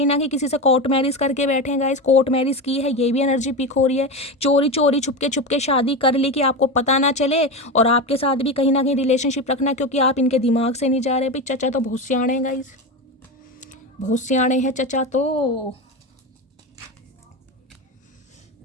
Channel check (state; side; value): normal; both; correlation 0.19